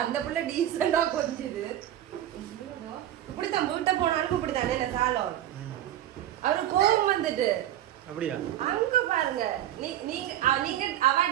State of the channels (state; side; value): quieter; left; 12.2 dB